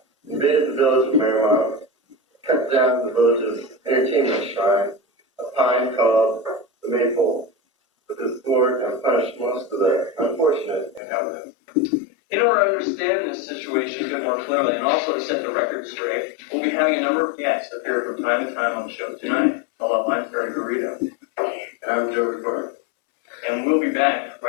invaded the village of Marymount, cut down the village's entertainment shrine, a pine called the Maypole, with his sword and punished most of the unfortunate inhabitants. In order to understand this situation a bit more clearly, and also to set the record straight, we'll be having a number of guests appear from time to time on the show tonight. Hello, I'm Terry Garrido. And I'm Joe Recorder. And we'll be back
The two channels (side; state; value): right; drops out; at 11.0 s